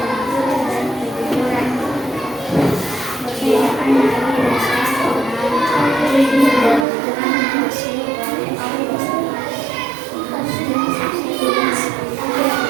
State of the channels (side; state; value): left; drops out; at 6.9 s